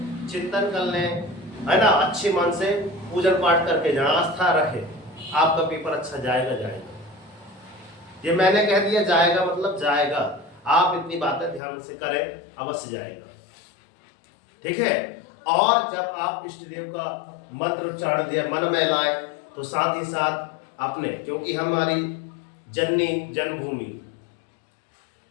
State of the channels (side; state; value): right; drops out; at 11.6 s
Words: चिंतन कर लें, है ना, अच्छे मन से पूजन पाठ करके जहां आस्था रखे, आपका पेपर अच्छा जाएगा। ये मैंने कह दिया जाएगा मतलब जाएगा, आप इतनी बातें ध्यान से करें, अवश्य जाएगा। ठीक है। और जब आप इष्ट देव का मंत्र उच्चारण दिया मन में लाए तो साथ ही साथ अपने, क्योंकि हमारी जननी जन्मभूमि